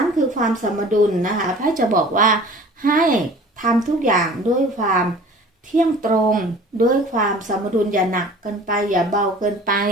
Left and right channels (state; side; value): normal; both; correlation 0.45